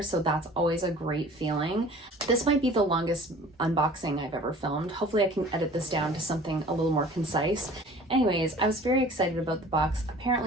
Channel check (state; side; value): normal; both; correlation 0.46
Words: so that's always a great feeling. This might be the longest unboxing I've ever filmed. Hopefully I can edit this down to something a little more concise. Anyways, I was very excited about the box.